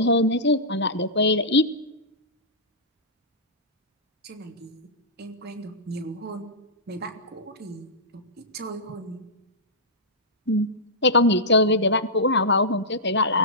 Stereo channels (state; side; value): normal; both; correlation -0.15